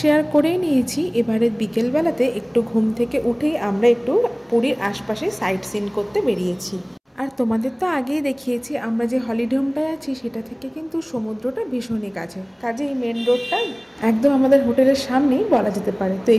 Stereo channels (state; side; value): identical; both; correlation 1.00